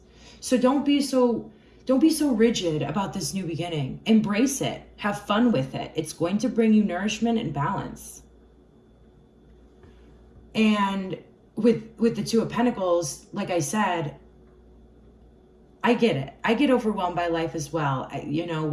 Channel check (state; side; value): identical; both; correlation 1.00